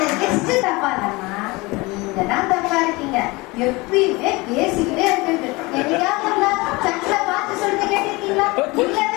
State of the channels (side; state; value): right; quieter; 23.8 dB